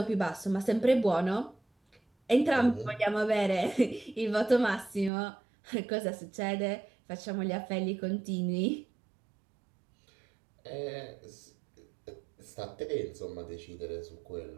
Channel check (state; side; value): drops out; left; at 5.1 s